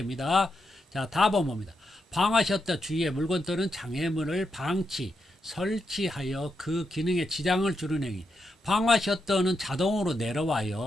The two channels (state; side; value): normal; both; correlation 0.84